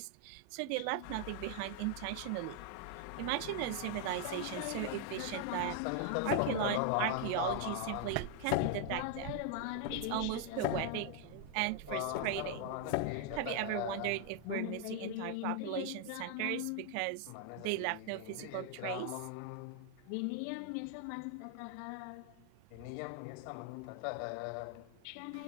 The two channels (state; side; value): different; both; correlation 0.00